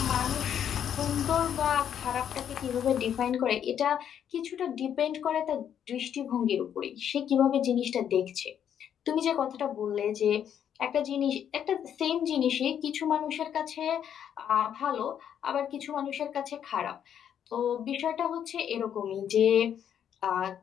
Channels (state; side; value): quieter; right; 9.1 dB